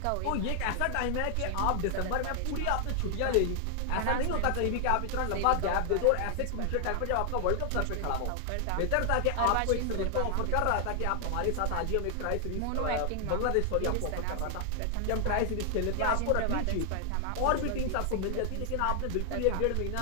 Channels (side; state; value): both; different; correlation 0.00